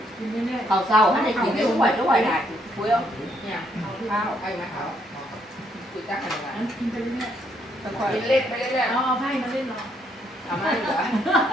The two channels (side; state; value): both; normal; correlation 0.72